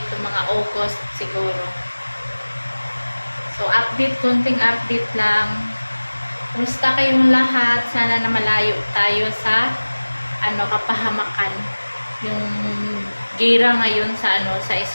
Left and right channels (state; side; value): inverted; both; correlation -1.00